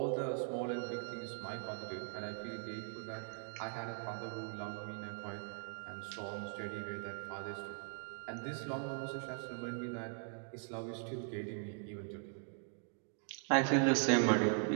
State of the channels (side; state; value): left; silent; 51 dB below the other